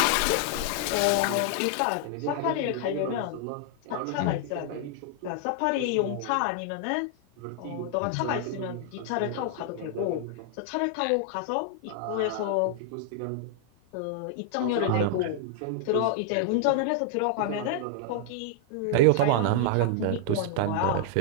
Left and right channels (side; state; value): both; different; correlation 0.00